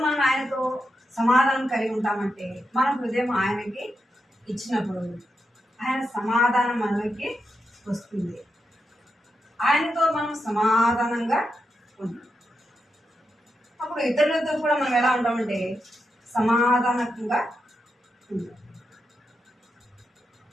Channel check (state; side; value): normal; both; correlation 0.86